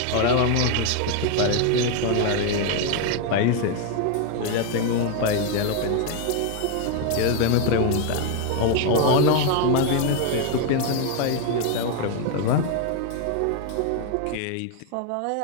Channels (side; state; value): both; different; correlation 0.01